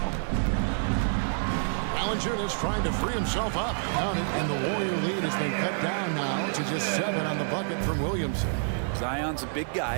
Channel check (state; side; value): silent; left; 59 dB below the other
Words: Valanciunas trying to free himself up. Count it, and the Warrior lead has been cut down now to just 7 on the bucket from Williamson. Zion's a big